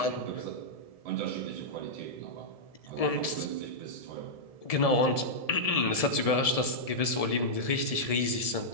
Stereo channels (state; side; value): late; right; 1.7 ms